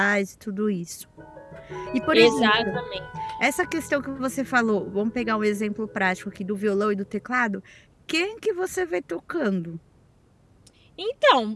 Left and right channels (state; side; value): identical; both; correlation 1.00